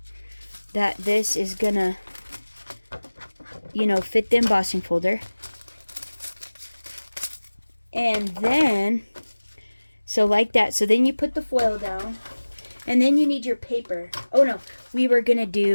that this is gonna, fit the embossing folder. And then, so like that. So then you put the foil down. And then you need your paper. Oh no, we were going to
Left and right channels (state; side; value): inverted; both; correlation -1.00